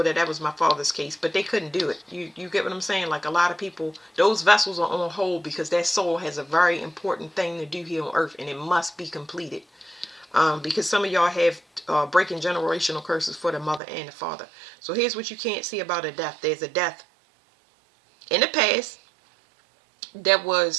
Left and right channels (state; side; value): drops out; left; at 13.8 s